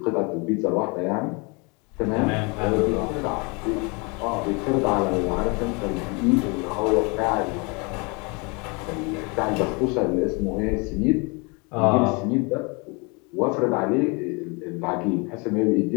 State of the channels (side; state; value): right; quieter; 30.2 dB